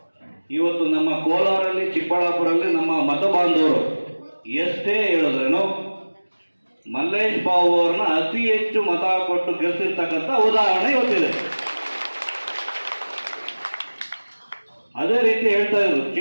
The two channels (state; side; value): inverted; both; correlation -1.00